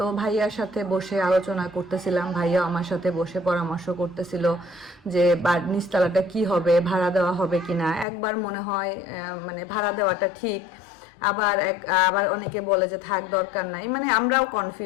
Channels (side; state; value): right; drops out; at 8.1 s